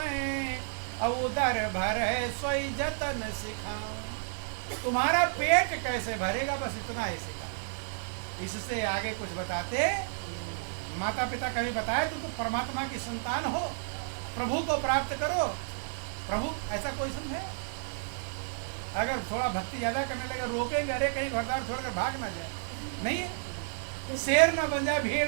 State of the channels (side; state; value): left; silent; 57 dB below the other